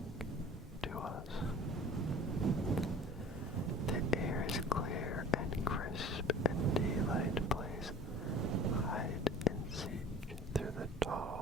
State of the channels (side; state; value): both; normal; correlation 0.41